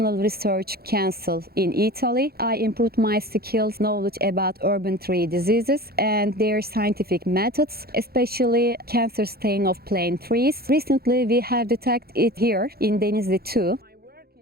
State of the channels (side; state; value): left; late; 0.45 ms